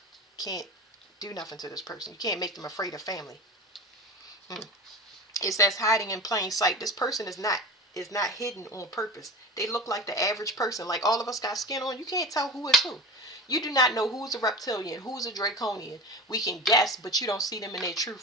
can't do nothing to this person. You can't make them afraid of family. It says hiding in plain sight. This person is not hidden on purpose. They look like the average person. Like all of us got skin on. You can't tell who is who. You do not know who's a reptilian, who's a draconian. We can guess, but you don't see them in their true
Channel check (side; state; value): both; normal; correlation 0.30